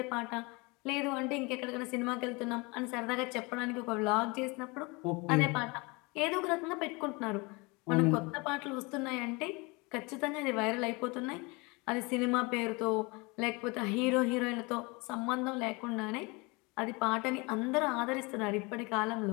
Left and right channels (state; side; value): quieter; right; 27.0 dB